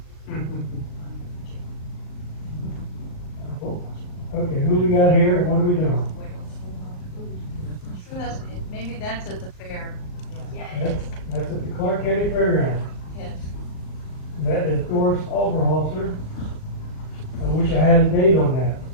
Okay, who we got here and what are we doing? Maybe that's at the fair. County Fairgrounds. Yes. That is Doris Oberholzer. I wish I had a date on that.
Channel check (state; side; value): late; right; 38 ms